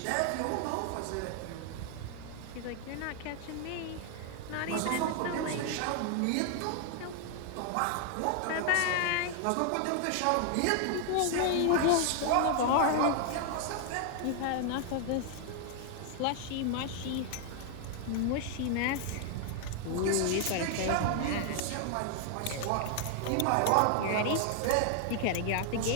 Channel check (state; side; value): different; both; correlation 0.00